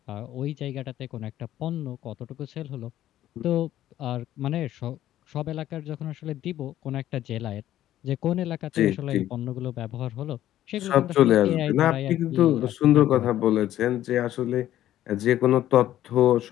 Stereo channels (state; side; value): quieter; right; 12.9 dB